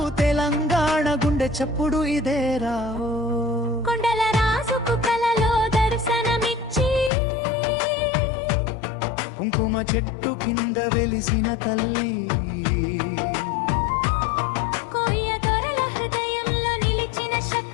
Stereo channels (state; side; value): drops out; right; at 7.1 s